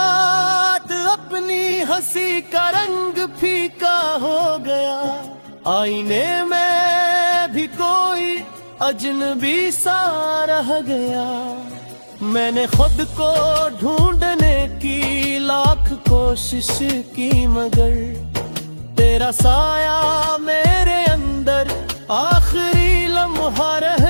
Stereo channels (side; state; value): both; inverted; correlation -1.00